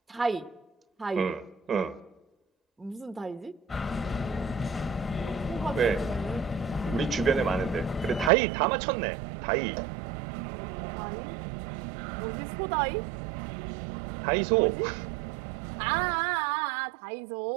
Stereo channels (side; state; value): left; drops out; at 8.3 s